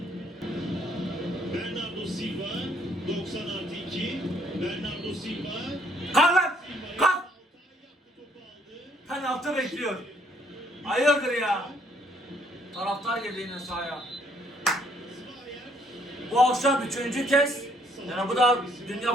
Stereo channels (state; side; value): normal; both; correlation 0.66